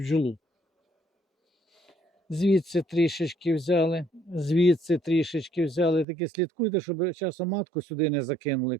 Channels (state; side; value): drops out; left; at 6.1 s